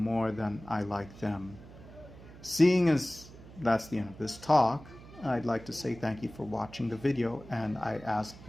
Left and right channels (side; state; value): right; noise; hum, 18 dB below the sound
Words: than I like them. Seeing as that's the end of this talk, I'd like to say thank you for watching the video, and I ask